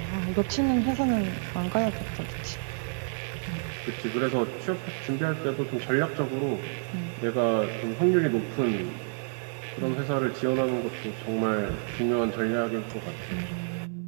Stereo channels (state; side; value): silent; left; 59 dB below the other